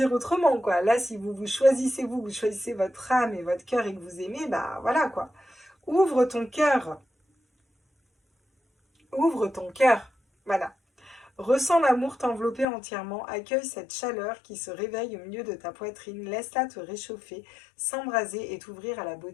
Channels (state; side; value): drops out; right; at 12.7 s